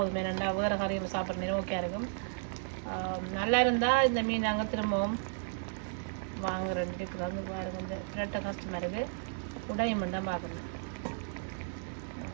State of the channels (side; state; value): left; silent; digital silence